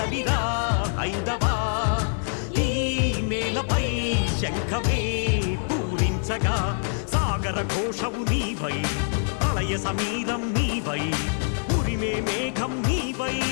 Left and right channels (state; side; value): silent; right; digital silence